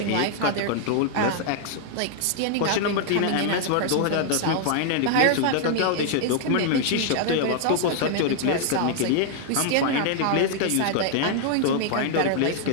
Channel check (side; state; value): both; different; correlation 0.00